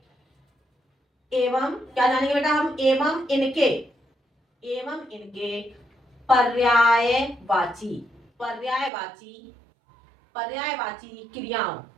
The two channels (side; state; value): left; drops out; at 8.9 s